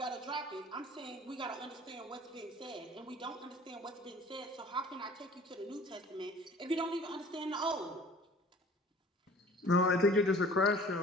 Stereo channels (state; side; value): normal; both; correlation 0.48